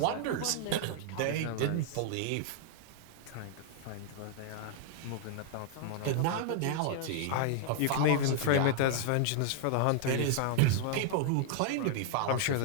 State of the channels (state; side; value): different; both; correlation -0.01